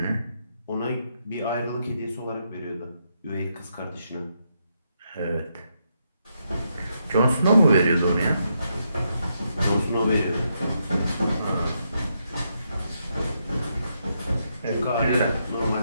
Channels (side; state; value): both; inverted; correlation -0.80